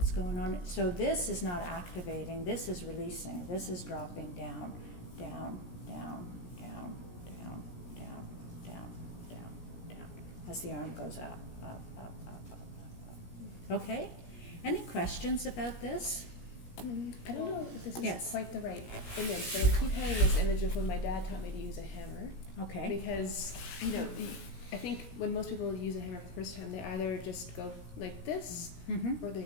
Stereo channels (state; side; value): late; right; 17 ms